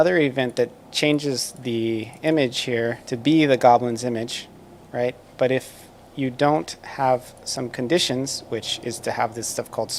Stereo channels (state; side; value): identical; both; correlation 1.00